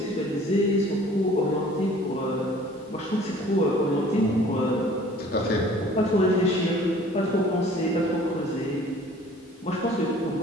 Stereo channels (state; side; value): normal; both; correlation 0.51